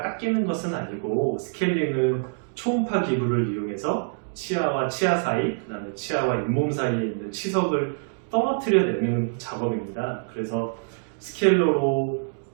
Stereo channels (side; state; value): left; silent; digital silence